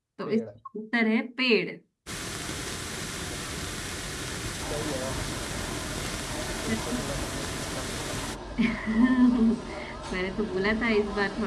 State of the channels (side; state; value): both; identical; correlation 1.00